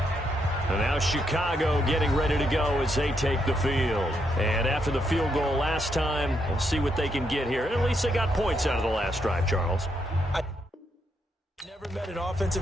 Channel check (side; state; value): both; normal; correlation 0.78